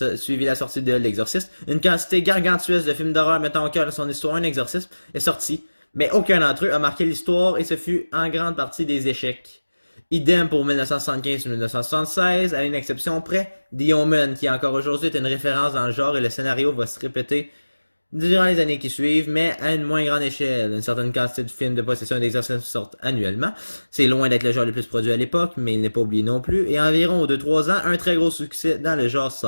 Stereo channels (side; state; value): both; inverted; correlation -1.00